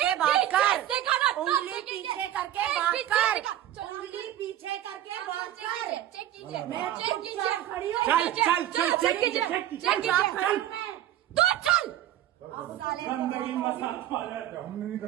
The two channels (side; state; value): left; quieter; 12.7 dB